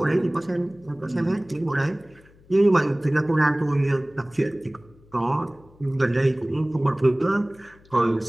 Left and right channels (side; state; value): left; noise; hum, 27 dB below the sound